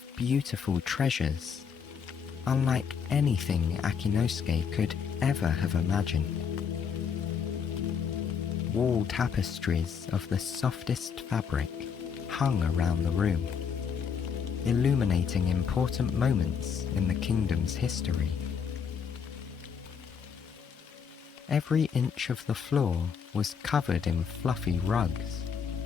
beautiful treasures, unlike anything Akinosuke could ever have imagined. Wall tapestries of the softest fabric hung around the room, illuminating important moments in the kingdom's history. Every inch of the floor was covered in fluffy rugs,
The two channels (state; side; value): quieter; right; 6.7 dB